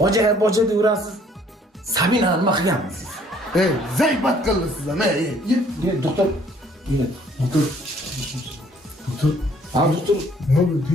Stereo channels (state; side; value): normal; both; correlation 0.60